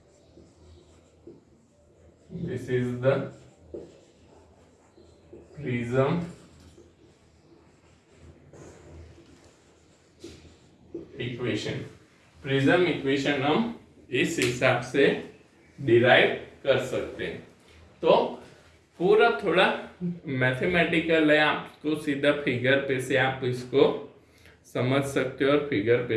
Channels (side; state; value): both; identical; correlation 1.00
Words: This is the prism equation. Prism equation हम इस हिसाब से डिराइव कर सकते हैं। तो पूरा थोड़ा मैथमेटिकल है, आपको सीधा फिगर पे से आप इसको समझ सकते हो और फिगर